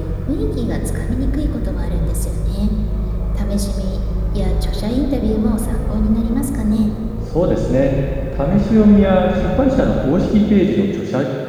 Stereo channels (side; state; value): both; identical; correlation 1.00